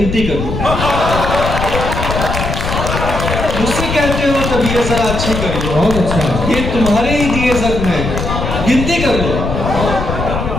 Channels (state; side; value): noise; left; rumble, 4 dB below the sound